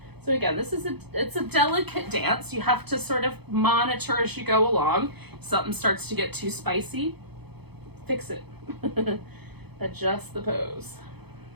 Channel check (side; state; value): left; late; 0.98 ms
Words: So again, it's a delicate dance. You have to sort of monitor as you go along. If something starts to get too spicy, fix it. Adjust the pose.